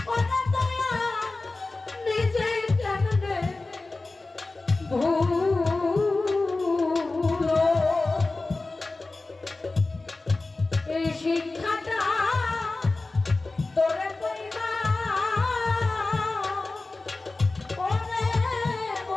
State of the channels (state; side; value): quieter; right; 3.3 dB